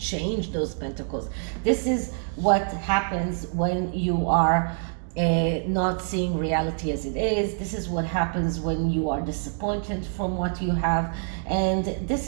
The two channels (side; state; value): left; silent; digital silence